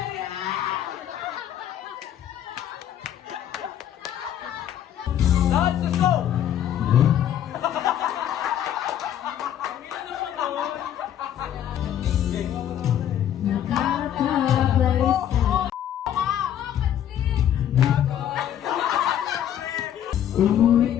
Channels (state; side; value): quieter; right; 10.5 dB